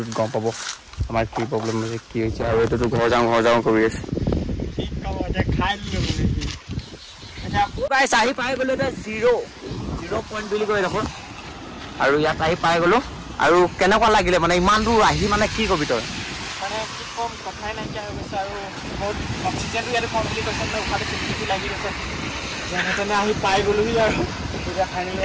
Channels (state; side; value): identical; both; correlation 1.00